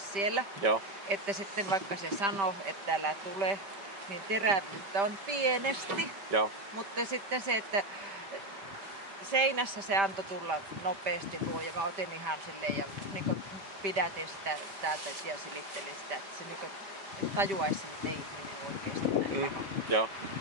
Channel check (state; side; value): late; left; 5.1 ms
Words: Joo. Että sitten vaikka se sanoo, että älä tule, niin terävyyttä on pienesti, Joo. mutta sitten se, että seinässä se antoi tulla nopeasti luo ja mä otin ihan silleen ja niin pidätin sitä täältä ja silittelin sitä, että se niin tajuaisi, että ei ihminen ole oikeasti näin paha. Joo.